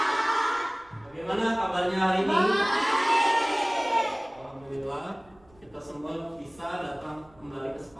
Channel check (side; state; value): right; noise; rumble, 29 dB below the sound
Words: Bagaimana kabarnya hari ini? Baik. Alhamdulillah, kita semua bisa datang kembali ke